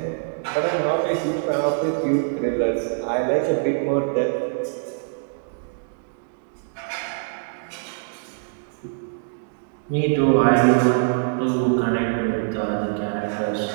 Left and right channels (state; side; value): silent; left; digital silence